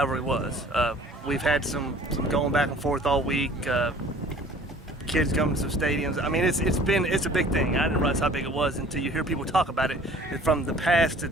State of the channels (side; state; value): both; normal; correlation 0.50